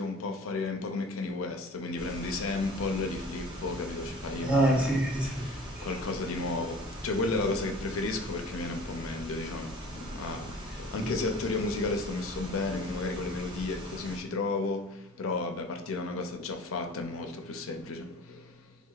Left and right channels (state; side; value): normal; both; correlation 0.44